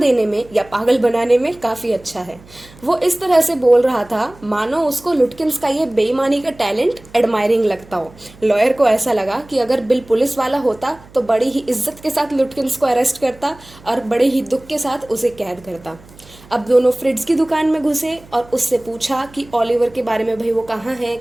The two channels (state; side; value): noise; right; hum, 23 dB below the sound